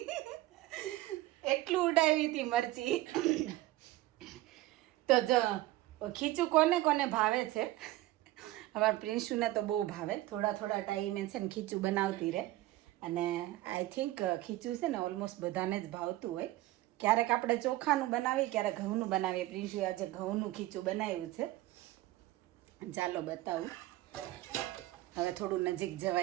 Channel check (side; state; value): left; quieter; 17.0 dB